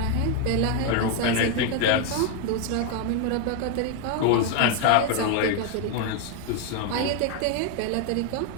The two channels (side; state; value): both; different; correlation 0.01